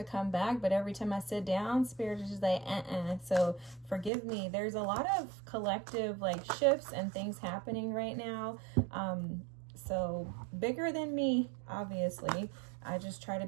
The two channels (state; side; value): drops out; left; at 4.1 s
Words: come back, but every time I sit down, Spirit is just like, So forgive me. There's a lot of collective shifts and things happening right now. So bigger than me, obviously. I just try to